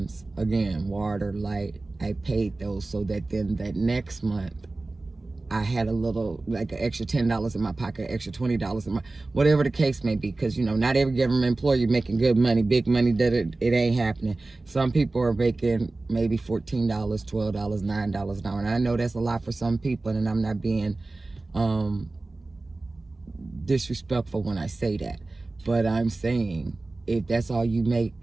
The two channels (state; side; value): quieter; left; 3.2 dB